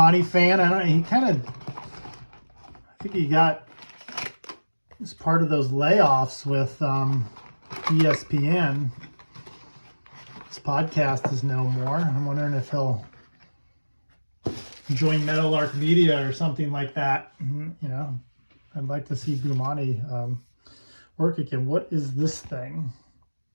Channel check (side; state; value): both; inverted; correlation -1.00